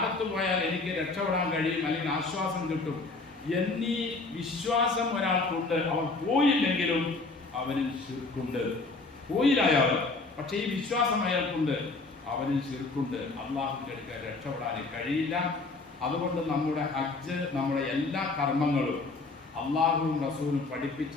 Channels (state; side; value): quieter; right; 3.6 dB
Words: പോയാൽ എനിക്ക് രക്ഷപ്പെടാൻ കഴിയും, അല്ലെങ്കിൽ ആശ്വാസം കിട്ടും എന്നീ വിശ്വാസം ഒരാൾക്കുണ്ട്. അവൻ പോയില്ലെങ്കിലും അവനിൽ ശിർക്കുണ്ട്. പോയില്ലായാൽ പക്ഷേ ഈ വിശ്വാസം അയാൾക്കുണ്ട്, അവനിൽ ശിർക്കുണ്ട്. അള്ളാഹുവിൻ്റെ അടുക്കൽ രക്ഷപ്പെടാൻ കഴിയില്ല. അതുകൊണ്ട് നമ്മുടെ ഹജ്ജ്, നമ്മുടെ എല്ലാ കർമ്മങ്ങളും അള്ളാഹുവും റസൂലും